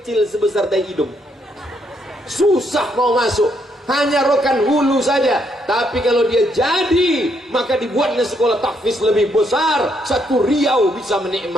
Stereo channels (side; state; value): both; normal; correlation 0.74